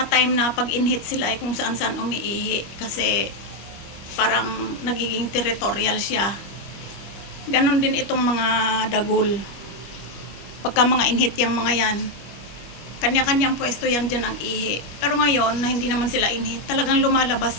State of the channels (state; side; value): late; right; 25 ms